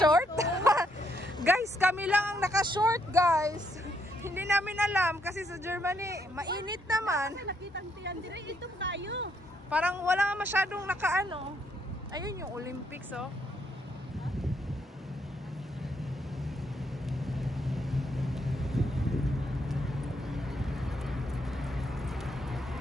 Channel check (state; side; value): normal; both; correlation 0.74